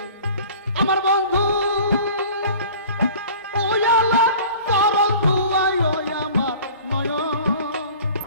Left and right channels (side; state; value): both; inverted; correlation -0.44